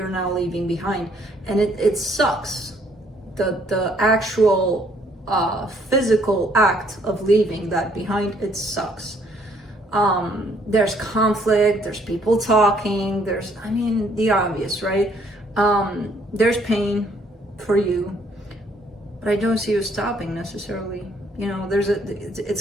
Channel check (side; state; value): both; normal; correlation 0.65